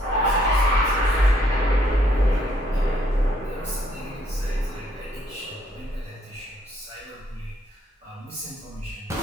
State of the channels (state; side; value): normal; both; correlation 0.68